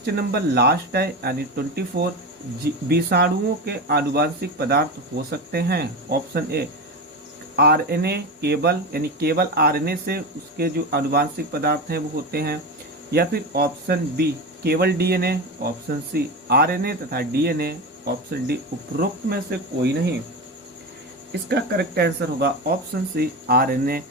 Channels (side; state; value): both; normal; correlation 0.21